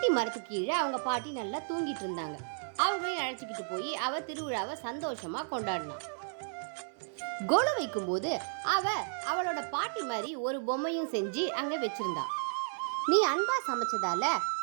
மரத்துக்கு கீழே அவங்க பாட்டி நல்லா தூங்கிட்டு இருந்தாங்க. அவங்களையும் அழைச்சிக்கிட்டு போய் அவ திருவிழாவை சந்தோஷமா கொண்டாடினான். கொலு வைக்கும் போது அவளோட பாட்டி மாதிரி ஒரு பொம்மையும் செஞ்சு அங்க வச்சிருந்தா. நீ அன்பா சமைச்சதால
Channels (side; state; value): left; silent; 56 dB below the other